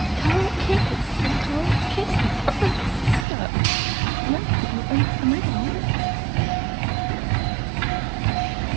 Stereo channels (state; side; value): drops out; left; at 3.2 s